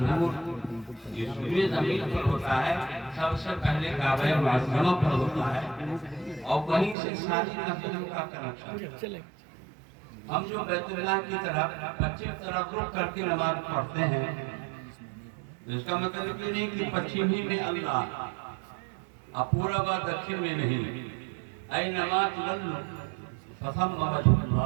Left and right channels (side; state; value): left; drops out; at 7.0 s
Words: اس پورے زمین پر ہوتا ہے، سب سے پہلے کعبہ معظمہ پر ہوتا ہے اور وہیں سے ساری مسجدوں کا کنیکشن۔ ہم جو بیت اللہ کی طرف پچھم طرف رخ کر کے نماز پڑھتے ہیں، اس کا مطلب یہ نہیں کہ پچھم ہی میں اللہ اور پورب و دکھن میں نہیں۔ اینما تولوا فثم وجہ